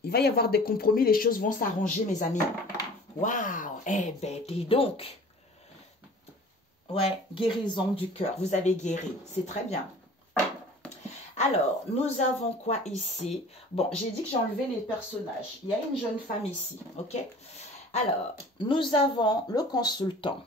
Il va y avoir des compromis. Les choses vont s'arranger, mes amis. Waouh! Eh ben, dis donc. Ouais, guérison du cœur. Vous avez guéri. C'est très bien. Alors, nous avons quoi ici? Bon, j'ai dit que j'ai enlevé les personnages. Il y a une jeune femme ici, ok? Alors, nous avons le consultant.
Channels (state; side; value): normal; both; correlation 0.45